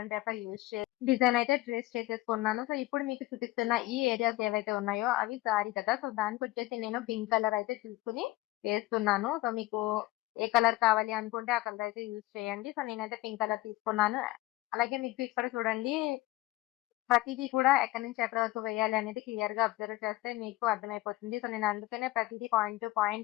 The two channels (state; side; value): quieter; right; 18.0 dB